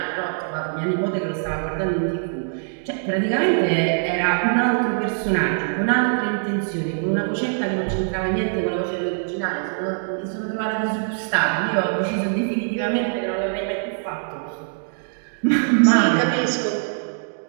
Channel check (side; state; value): left; silent; digital silence